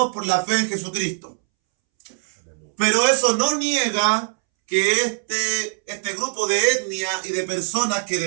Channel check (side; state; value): left; silent; 64 dB below the other